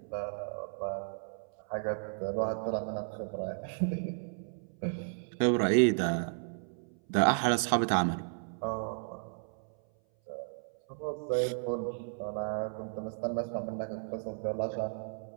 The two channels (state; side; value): silent; left; 55 dB below the other